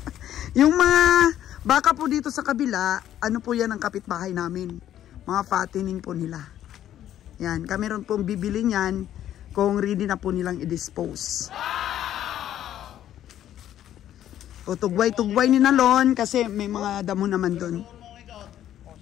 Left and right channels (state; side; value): quieter; right; 11.5 dB